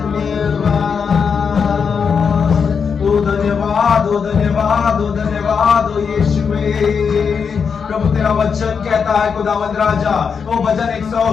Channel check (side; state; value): right; quieter; 6.2 dB